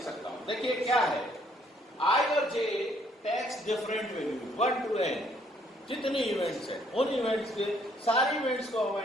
सकता हूं। देखिए क्या है, i और j takes different value 1 to n जितने इवेंट्स हैं उन इवेंट्स के सारे इवेंट्स को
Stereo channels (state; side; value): normal; both; correlation 0.66